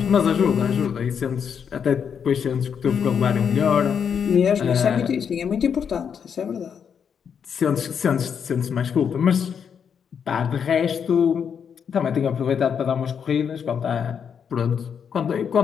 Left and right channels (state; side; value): quieter; right; 7.3 dB